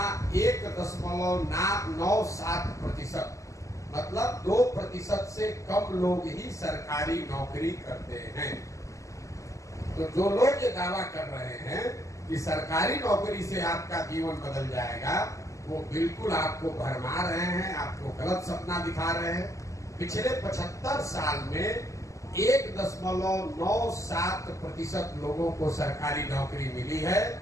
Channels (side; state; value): right; late; 0.16 ms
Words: 1.97%, मतलब 2% से कम लोग ही सरकारी नौकरी करते हैं। तो जो लोग ये दावा कर रहे हैं कि सरकारी नौकरी से आपका जीवन बदल जाएगा, वो बिल्कुल आपको भरमा रहे हैं, आपको गलत सपना दिखा रहे हैं। पिछले 75 साल में 1.97% लोगों को सरकारी नौकरी मिली है।